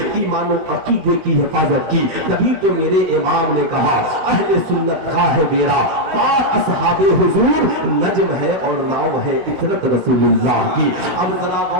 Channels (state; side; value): late; left; 16 ms